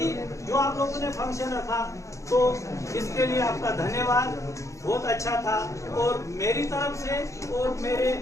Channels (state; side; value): late; right; 0.15 ms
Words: जो आप लोगों ने फंक्शन रखा तो इसके लिए आपका धन्यवाद, बहुत अच्छा था। और मेरी तरफ से और मेरे